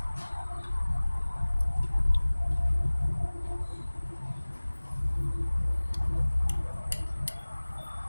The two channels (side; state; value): both; inverted; correlation -1.00